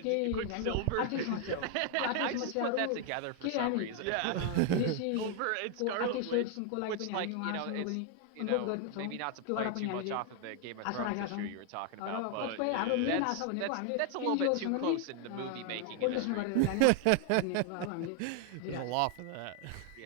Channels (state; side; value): different; both; correlation 0.00